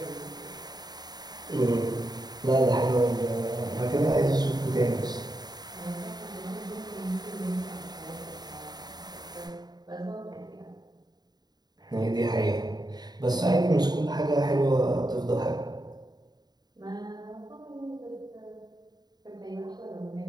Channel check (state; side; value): late; left; 0.20 ms